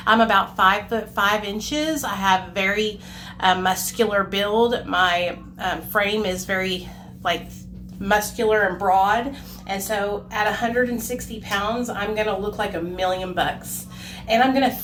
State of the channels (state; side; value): identical; both; correlation 1.00